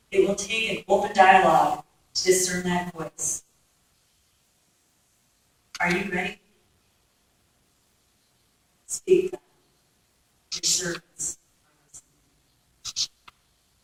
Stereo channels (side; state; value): both; identical; correlation 1.00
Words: It will take an open dialogue to discern that voice. Are you ready?